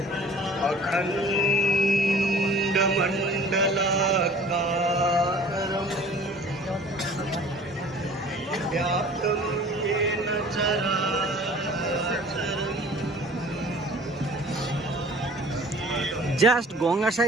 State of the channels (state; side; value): normal; both; correlation 0.48